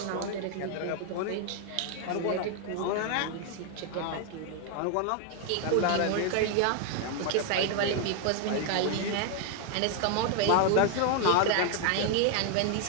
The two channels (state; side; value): different; both; correlation 0.00